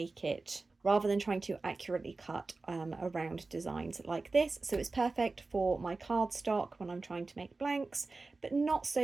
accurately cut around designs like this. So it's perfect for my cardstock when I'm trying to make blanks, but not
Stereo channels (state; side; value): quieter; left; 3.6 dB